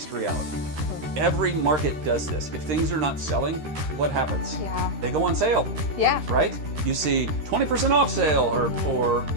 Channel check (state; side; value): late; left; 13 ms